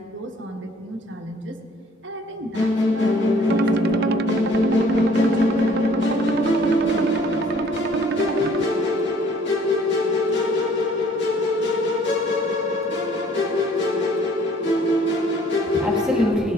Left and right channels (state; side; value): normal; both; correlation 0.57